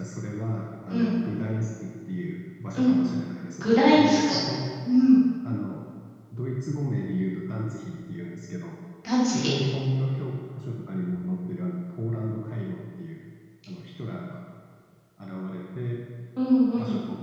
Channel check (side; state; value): both; identical; correlation 1.00